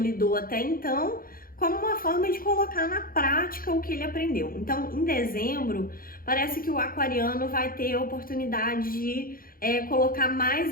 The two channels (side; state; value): right; late; 0.42 ms